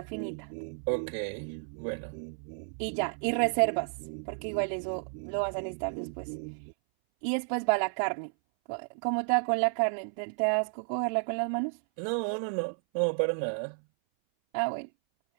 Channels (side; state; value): left; silent; 56 dB below the other